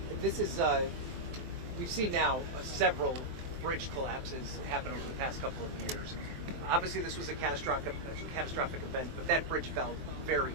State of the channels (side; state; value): left; late; 23 ms